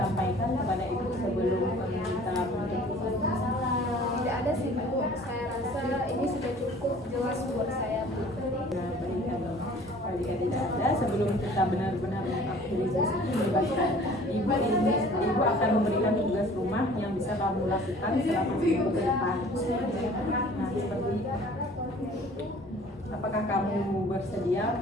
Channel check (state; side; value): normal; both; correlation 0.50